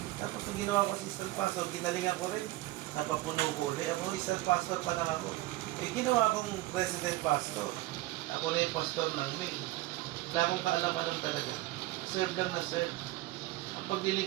Tapos nung ginawa ko assistant pastor, ginalingan ko rin. Napapuno ko ulit. Ako assistant pastor pa lang ako. Ginawa kong president pastor. Ako na yung pastor ng main. Wala akong kaalam-alam talaga. Serve lang na serve. Ang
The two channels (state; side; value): quieter; left; 18.3 dB